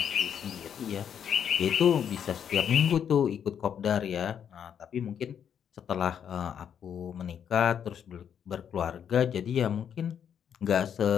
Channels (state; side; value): quieter; right; 8.4 dB